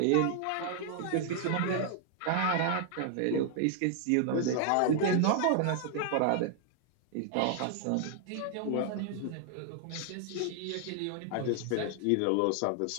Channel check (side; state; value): both; different; correlation 0.00